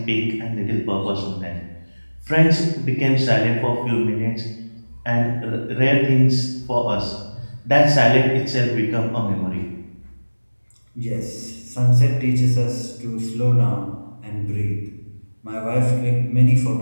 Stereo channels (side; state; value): both; inverted; correlation -1.00